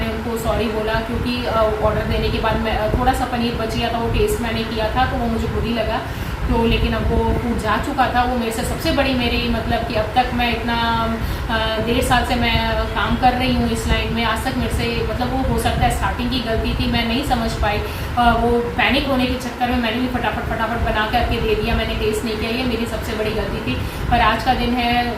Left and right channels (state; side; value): identical; both; correlation 1.00